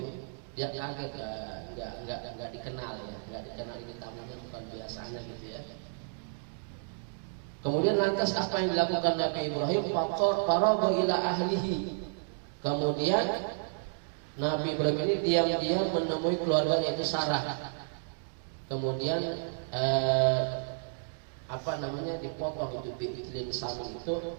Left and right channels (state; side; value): silent; left; digital silence